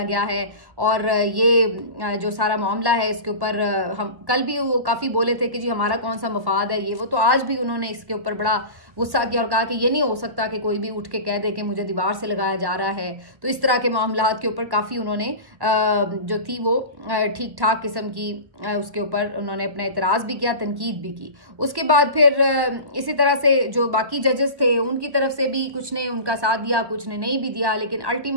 गया है। और ये जो सारा मामला है इसके ऊपर हम कल भी वो काफी बोले थे कि जी हमारा कौन सा मफाद है ये वो, तो आज भी उन्होंने इसके ऊपर बड़ा गुस्सा किया और कहा कि ये नहीं हो सकता कि कोई भी उठ के कह दे कि मुझे दीवार से लगाया जा रहा है। तो इस तरह के मामलात के ऊपर काफी उन्होंने जो थी वो ठीक ठाक किस्म की उसके ऊपर उन्होंने अपना एतराज भी किया, तनकीद भी की। उसके बाद फिर इसी तरह से जो बाकी जजेस थे उनकी तरफ से भी कुछ ने उनका साथ दिया, कुछ ने नहीं भी दिया, लेकिन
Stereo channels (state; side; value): late; left; 1.1 ms